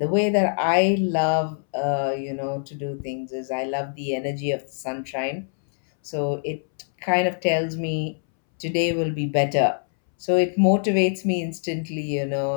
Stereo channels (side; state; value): right; silent; 63 dB below the other